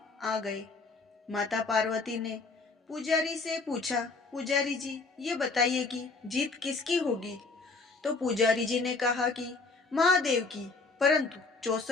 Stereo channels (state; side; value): quieter; right; 3.9 dB